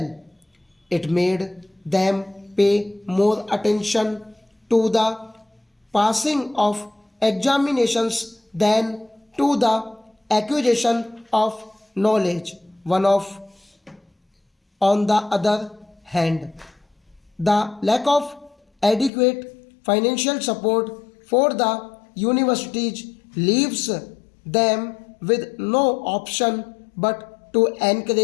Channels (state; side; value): drops out; right; at 19.1 s